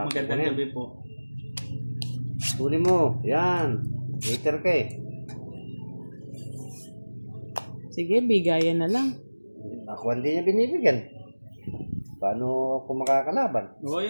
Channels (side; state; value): both; inverted; correlation -1.00